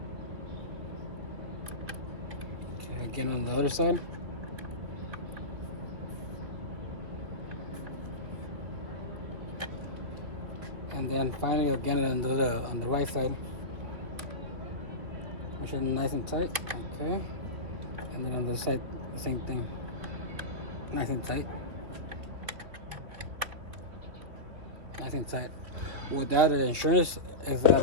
Okay, again on the other side. And then finally again on the right side. Make sure it's nice and tight. Okay. And then on the side, the same thing. Nice and tight. Nice and tight. Without the insurance is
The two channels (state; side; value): late; left; 3.1 ms